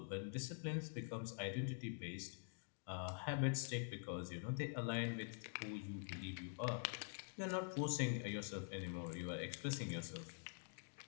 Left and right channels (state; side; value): silent; right; digital silence